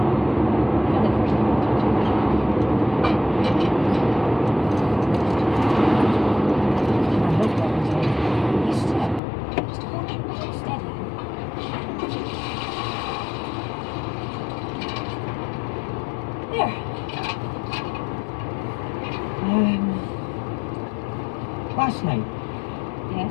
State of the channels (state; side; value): drops out; right; at 9.2 s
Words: Last night, Yes,